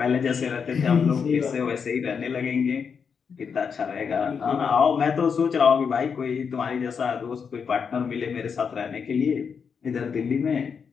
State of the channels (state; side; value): quieter; right; 6.3 dB